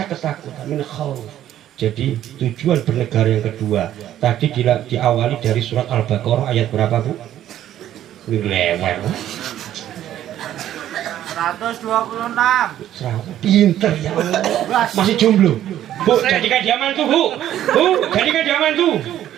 ketakutan, min khauf. Jadi tujuan bernegara yang kedua tadi diawali dari surat Al-Baqarah ayat berapa, Bu? Lewat 126. Pinter ya Allah. Masih jomblo, Bu, jadikan dia mantu, Bu. Bu, jadikan dia mantu.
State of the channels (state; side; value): quieter; left; 11.9 dB